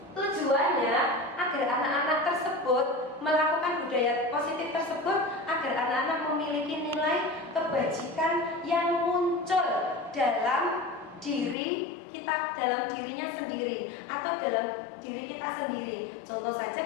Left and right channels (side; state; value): right; drops out; at 11.6 s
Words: Tujuannya agar anak-anak tersebut melakukan budaya positif tersebut agar anak-anak memiliki nilai kebajikan yang muncul dalam diri kita, dalam dirinya sendiri atau dalam diri kita sendiri. Contoh saja